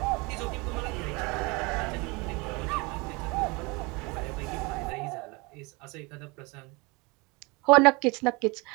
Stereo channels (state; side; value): quieter; left; 26.9 dB